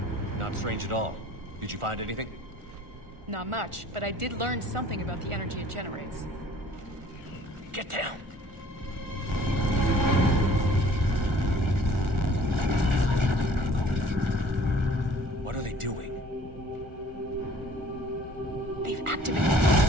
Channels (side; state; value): left; late; 1.4 ms